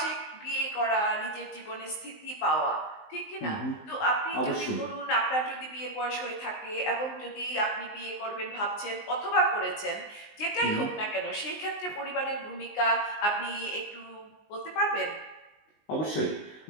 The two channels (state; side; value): late; right; 19 ms